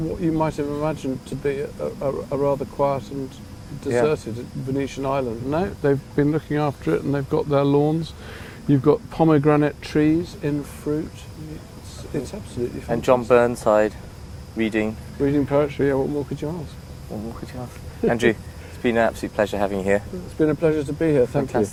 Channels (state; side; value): identical; both; correlation 1.00